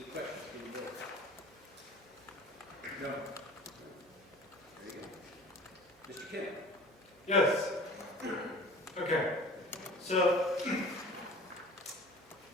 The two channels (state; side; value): normal; both; correlation 0.43